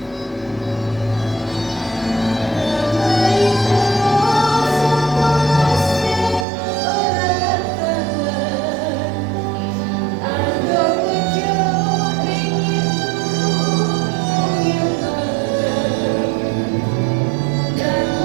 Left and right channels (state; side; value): drops out; left; at 6.5 s